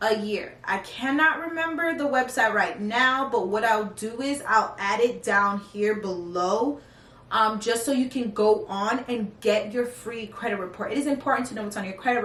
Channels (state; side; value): identical; both; correlation 1.00